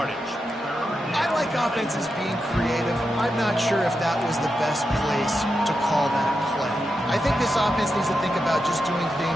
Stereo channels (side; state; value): both; normal; correlation 0.88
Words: I like offenses being creative. I'm not sure if that was the best place to call that play. I think this offense needs to think about just doing